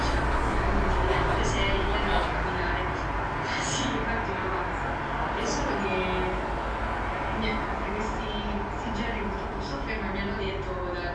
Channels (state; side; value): identical; both; correlation 1.00